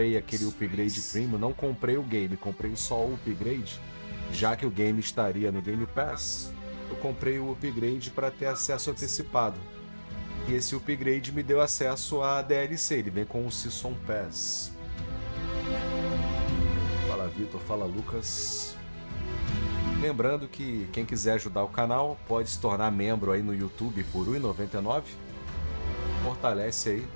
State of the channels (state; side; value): inverted; both; correlation -1.00